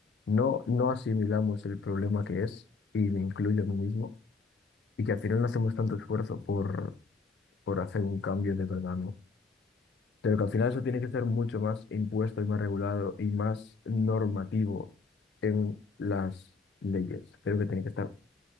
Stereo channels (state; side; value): quieter; right; 4.3 dB